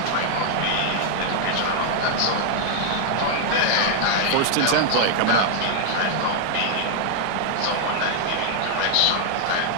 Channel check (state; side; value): different; both; correlation 0.00